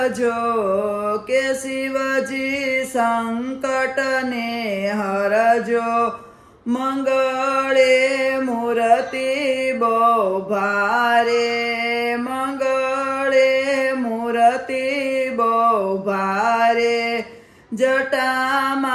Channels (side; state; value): both; identical; correlation 1.00